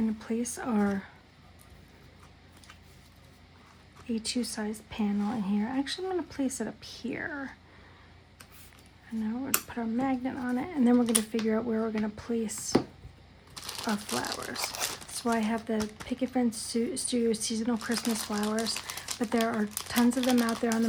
to place our A2 sized panel in here. Actually, I'm going to place it up here. And now we're going to put our magnet on it, and then we're going to figure out where we're going to place our flowers. So I have the Picket Fence Studio Seasonal Christmas Flowers, but there are tons of them out there on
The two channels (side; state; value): both; identical; correlation 1.00